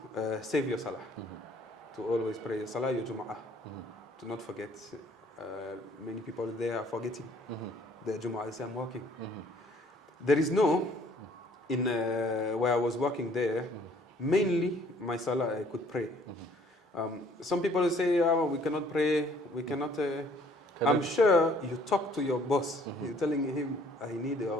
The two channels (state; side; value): normal; both; correlation 0.59